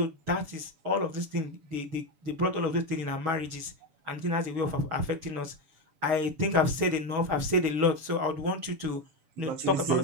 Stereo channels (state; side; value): late; left; 7.0 ms